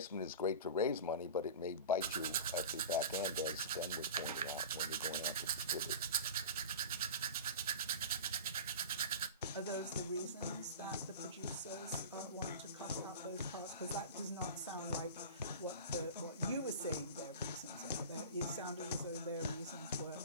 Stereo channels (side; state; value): both; inverted; correlation -0.32